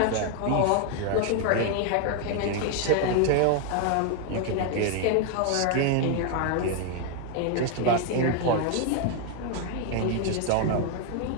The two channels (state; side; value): different; both; correlation 0.00